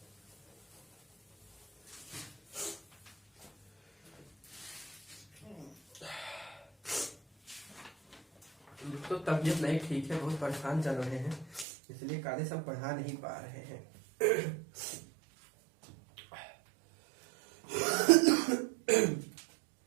तो तबीयत नहीं ठीक है, बहुत परेशान चल रहे हैं, इसलिए काले सब पढ़ा नहीं पा रहे हैं।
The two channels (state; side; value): drops out; left; at 11.7 s